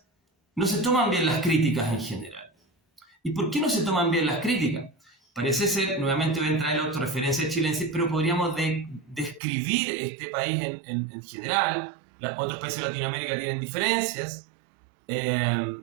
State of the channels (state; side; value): drops out; left; at 9.4 s